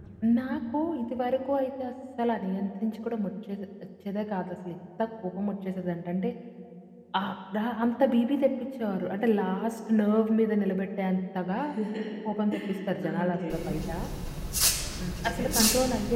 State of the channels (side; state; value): both; identical; correlation 1.00